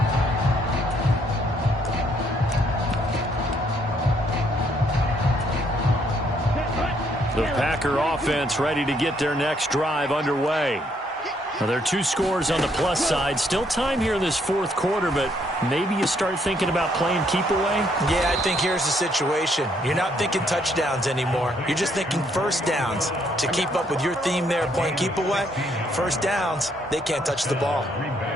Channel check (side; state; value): both; normal; correlation 0.70